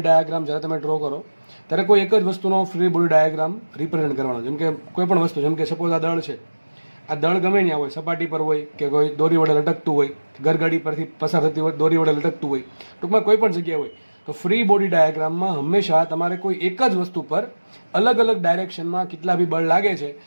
ડાયાગ્રામ જ્યારે તમે ડ્રો કરો ત્યારે કોઈ એક જ વસ્તુનો ફ્રી બોડી ડાયાગ્રામ રિપ્રેઝેન્ટ કરવાનો. જેમ કે કોઈ પણ વસ્તુ, જેમ કે સપોઝ આ દળ છે, આ દળ ગમે ત્યાં હોય, સપાટી પર હોય કે કોઈ દોરી વડે લટકતું હોય, ગરગાડી પરથી પસાર થતી હોય દોરી વડે લટકતું હોય, ટૂંકમાં કોઈ પણ જગ્યાએ હોય, તો ફ્રી બોડી ડાયાગ્રામમાં હંમેશા તમારે કોઈ એક જ વસ્તુ પર અલગ અલગ ડાયરેક્શનમાં કેટલા બી બળ લાગે છે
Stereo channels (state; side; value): inverted; both; correlation -1.00